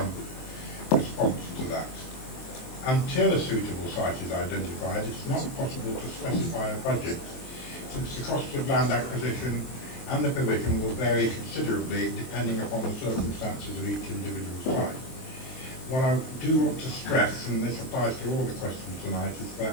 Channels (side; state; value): right; late; 23 ms